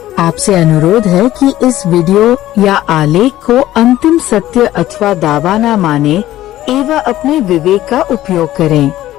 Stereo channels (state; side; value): quieter; right; 14.4 dB